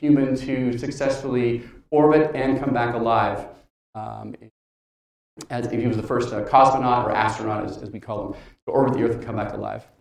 to successfully orbit and come back alive. As he was the first cosmonaut or astronaut, as we call them, to orbit the Earth and come back alive.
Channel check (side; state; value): both; identical; correlation 1.00